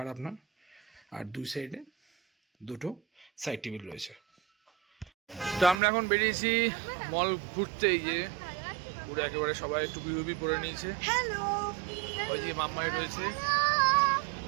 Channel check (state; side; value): drops out; left; at 5.8 s